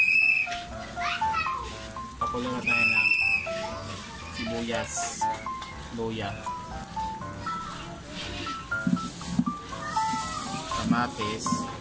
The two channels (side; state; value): both; identical; correlation 1.00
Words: Pakulo na tayo ng sibuyas, luya, kamatis